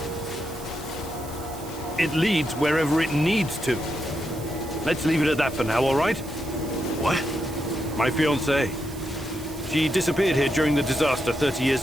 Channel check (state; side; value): noise; right; hiss, 17 dB below the sound